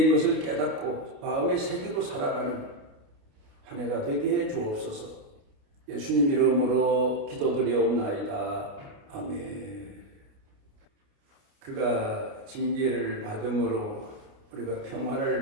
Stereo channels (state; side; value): late; left; 29 ms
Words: 것을 깨닫고 마음에 새기고 살아가는 한 해가 되게 해 주옵소서. 예수님 이름으로 기도드리옵나이다. 아멘. 그가 징계를 받음으로 우리가 평화를